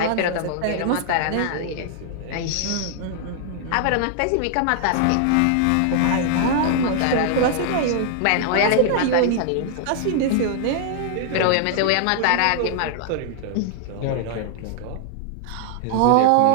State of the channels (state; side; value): different; both; correlation -0.01